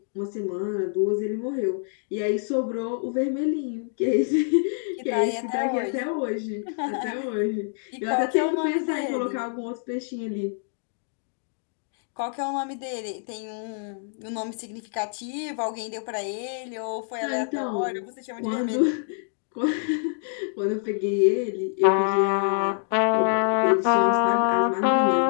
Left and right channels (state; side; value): silent; right; digital silence